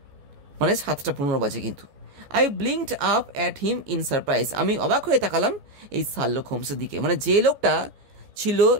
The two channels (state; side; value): late; left; 14 ms